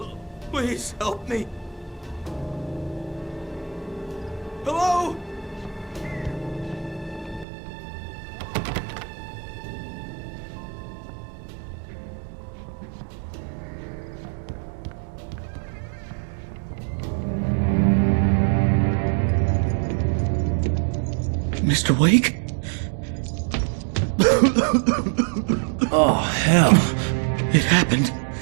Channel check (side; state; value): left; drops out; at 7.5 s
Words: Please help me. Hello? Mr. Wake? Oh, hell. It happened